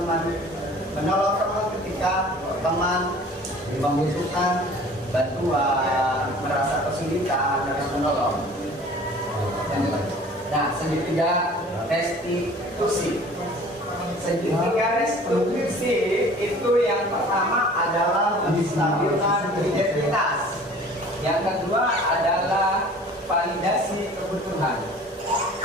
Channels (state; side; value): normal; both; correlation 0.47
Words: ketika teman membutuhkan bantuan, merasa kesulitan, harus menolong. Nah, segitiga restitusi. Segitiga restitusi itu yang pertama adalah menstabilkan identitas. Yang kedua adalah validasi kebutuhan.